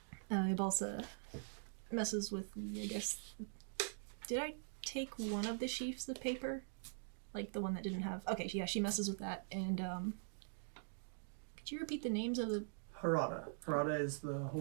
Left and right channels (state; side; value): silent; left; digital silence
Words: Ibalsa messes with the, I guess... Did I take one of the sheafs of paper? Like the one that didn't have... Okay, yeah, she messes with that. And, could you repeat the names of the... Harada. Harada is the